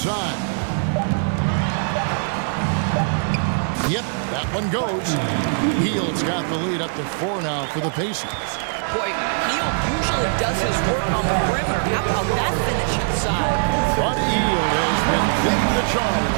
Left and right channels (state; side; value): silent; left; 64 dB below the other